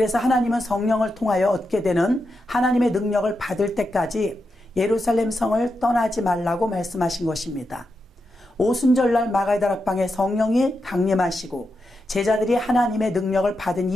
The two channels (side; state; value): both; normal; correlation 0.87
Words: 하나님은 성령을 통하여 얻게 되는 하나님의 능력을 받을 때까지 예루살렘 성을 떠나지 말라고 말씀하신 것입니다. 오순절날 마가다락방에 성령이 강림하시고 제자들이 하나님의 능력을 받은